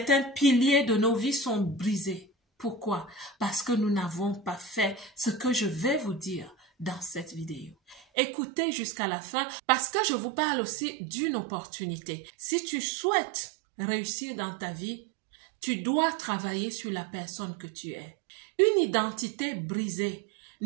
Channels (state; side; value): drops out; left; at 8.0 s